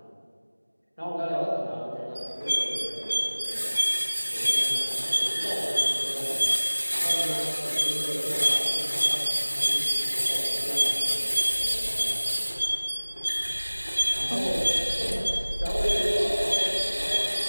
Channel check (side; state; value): both; inverted; correlation -1.00